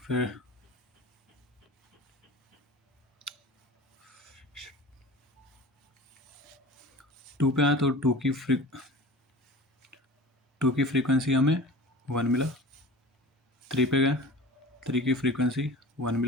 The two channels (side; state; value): both; normal; correlation 0.38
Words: फिर टू पे आए तो टू की फ्रीक्वेंसी हमें 1 मिला। 3 पे गए, 3 की फ्रीक्वेंसी 1